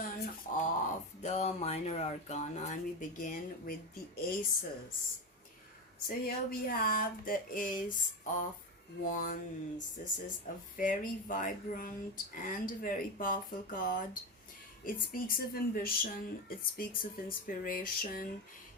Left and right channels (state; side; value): normal; both; correlation 0.17